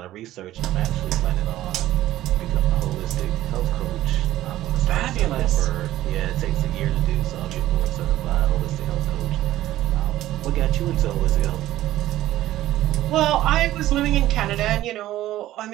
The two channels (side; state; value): left; quieter; 14.6 dB